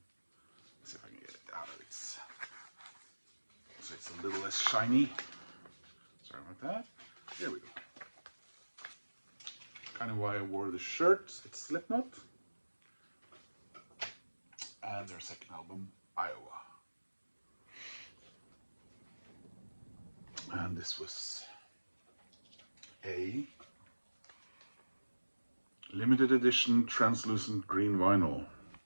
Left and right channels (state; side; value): inverted; both; correlation -1.00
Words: see if I can get it out of its. So it's a little less shiny. Sorry about that. There we go. Kind of why I wore the shirt. It's Slipknot. And their second album, Iowa. And this was a limited edition translucent green vinyl.